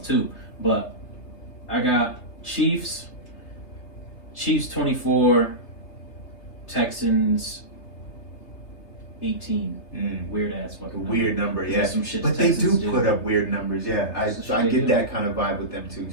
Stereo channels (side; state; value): right; late; 3.3 ms